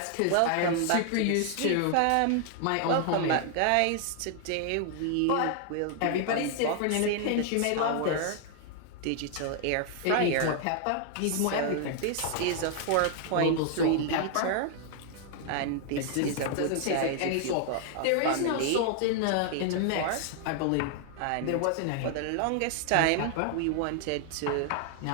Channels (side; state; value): both; different; correlation 0.00